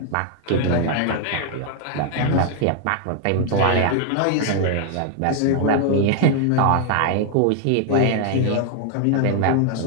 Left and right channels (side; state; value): both; different; correlation 0.00